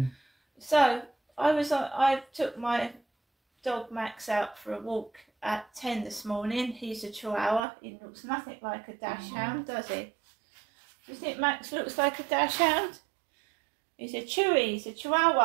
So I took my dog Max out for a walk at 10 this morning. He's a Chihuahua. He looks nothing like a Dachshund, does he? Do you think Max looks like a Dachshund? He's a Chewy. He's a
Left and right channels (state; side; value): drops out; left; at 7.6 s